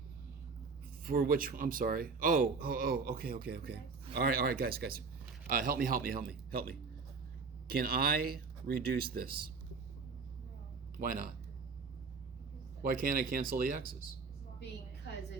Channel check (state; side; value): quieter; left; 4.8 dB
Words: For which, I'm sorry. Oh, okay. All right, guys. Help me. Can I reduce this? No. Why not? Because Why can't I cancel the x's? it's long way. Because